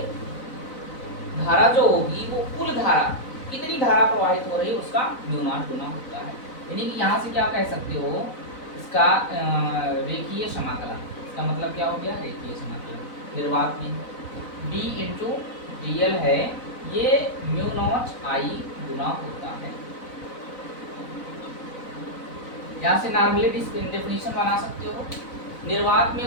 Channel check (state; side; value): late; right; 4.0 ms